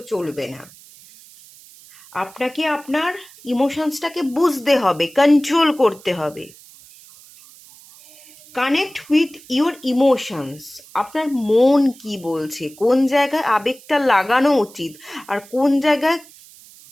চলবে না। আপনাকে আপনার ইমোশনসটাকে বুঝতে হবে, কন্ট্রোল করতে হবে। Connect with your emotions. আপনার মন কি বলছে, কোন জায়গায় আবেগটা লাগানো উচিত আর কোন জায়গায়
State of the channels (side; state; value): right; noise; hiss, 23 dB below the sound